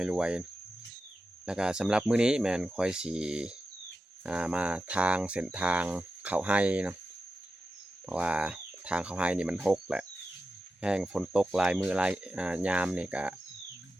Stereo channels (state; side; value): normal; both; correlation 0.91